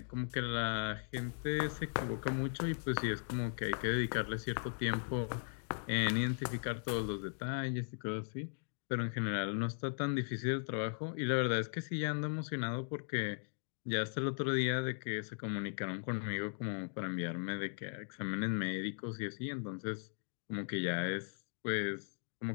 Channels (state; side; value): silent; right; digital silence